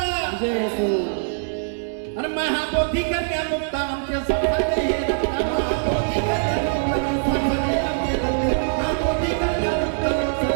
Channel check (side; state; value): left; silent; 61 dB below the other